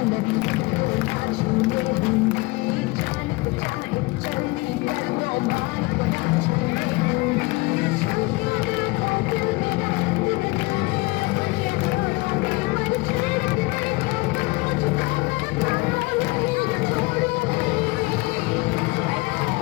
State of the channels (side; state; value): right; quieter; 23.4 dB